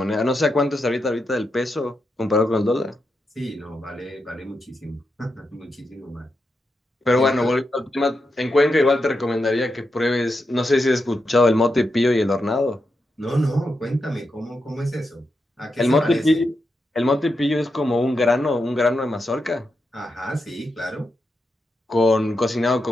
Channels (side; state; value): both; normal; correlation 0.86